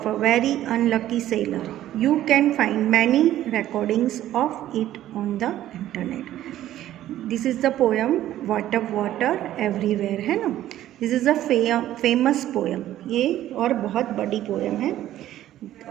a very unlucky sailor. You can find many recordings of it on the internet. This is the poem Water Water Everywhere, है ना. This is a famous poem. ये और बहुत बड़ी poem है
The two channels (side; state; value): left; quieter; 13.1 dB